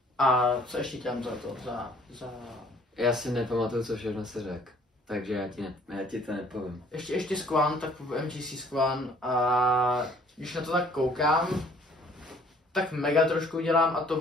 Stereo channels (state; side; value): normal; both; correlation 0.57